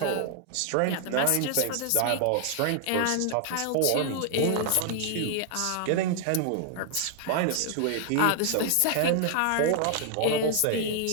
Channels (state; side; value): different; both; correlation 0.00